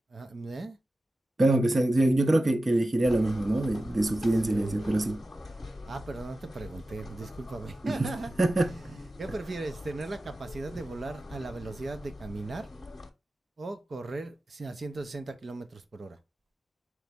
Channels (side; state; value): both; normal; correlation 0.94